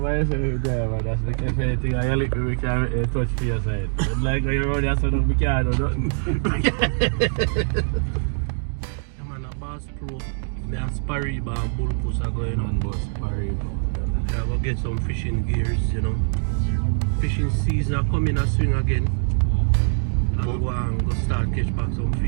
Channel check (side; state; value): left; silent; digital silence